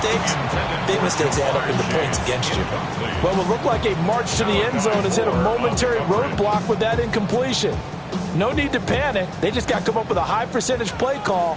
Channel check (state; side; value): identical; both; correlation 1.00